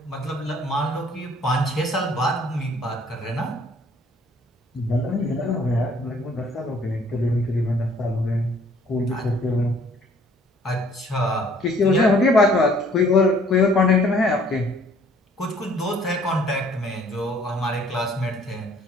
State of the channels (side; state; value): both; normal; correlation 0.58